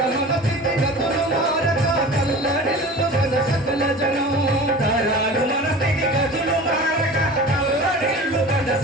మన స్థితిగతులు మారక కల్లడిల్లు మన సకల జనం తరాలు మన స్థితిగతులు మారక కల్లడిల్లు మన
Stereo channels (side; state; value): both; normal; correlation 0.38